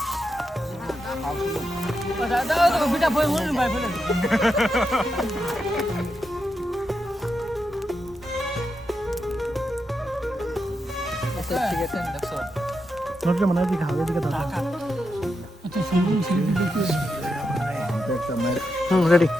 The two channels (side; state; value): both; normal; correlation 0.85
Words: নুরুজ্জামান এদিকে হাওয়া এদিকে দাও। রেডি।